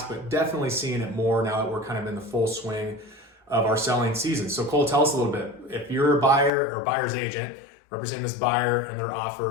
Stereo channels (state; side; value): drops out; right; at 6.5 s